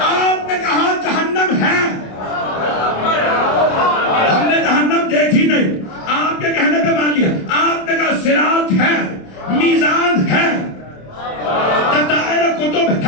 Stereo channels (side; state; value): right; late; 27 ms